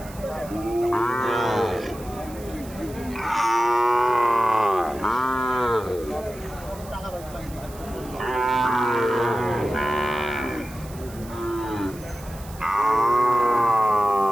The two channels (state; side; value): noise; right; hiss, 20 dB below the sound